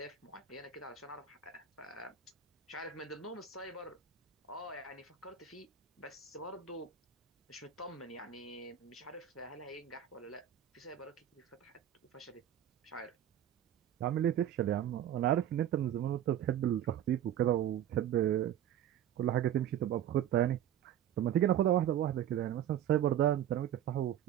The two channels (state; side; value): quieter; left; 10.6 dB